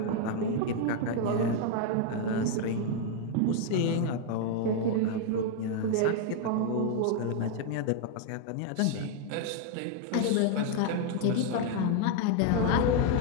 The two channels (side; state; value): both; different; correlation 0.00